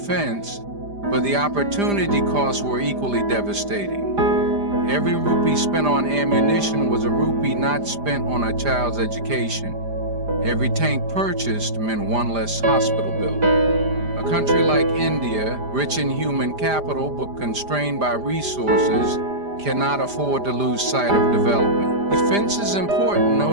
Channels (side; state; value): left; late; 5.0 ms